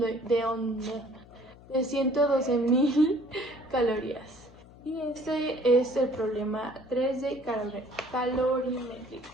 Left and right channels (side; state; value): left; noise; hum, 22 dB below the sound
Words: calorías. Y este es el problema 3 de calorimétrica.